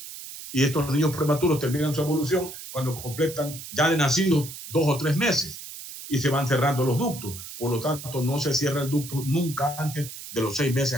Y estos niños prematuros terminan su evolución cuando completan ya de nacidos 2 o 3 meses y se van cerrando los ductos. Por lo tanto, no se cierra el ducto nunca antes de los 6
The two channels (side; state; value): right; noise; hiss, 12 dB below the sound